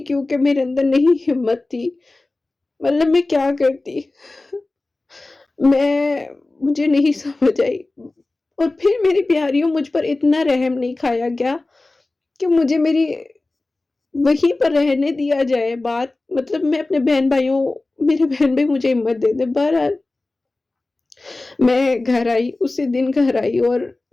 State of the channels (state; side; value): quieter; right; 3.1 dB